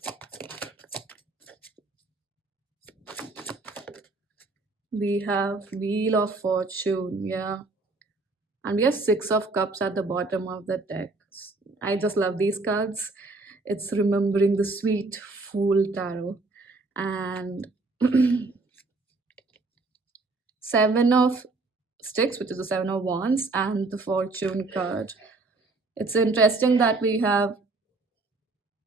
we have wheel of fortune. Yeah, and we have 6 of cups at the bottom of the deck. I just love these cards. It's remembering the sweet fool tarot. and seven of sticks, which is the seven of wands, and the fortune card. It's interesting that we have,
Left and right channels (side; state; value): left; quieter; 3.5 dB